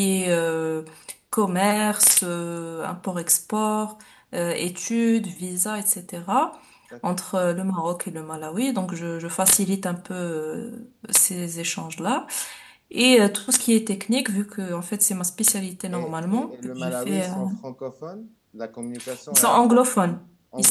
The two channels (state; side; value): identical; both; correlation 1.00